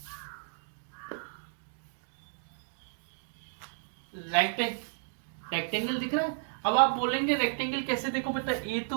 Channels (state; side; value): silent; left; digital silence